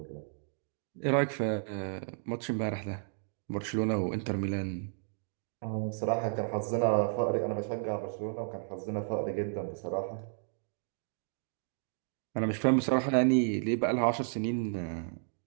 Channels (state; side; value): silent; left; digital silence